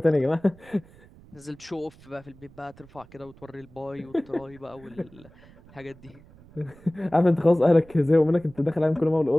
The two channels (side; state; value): right; noise; rumble, 24 dB below the sound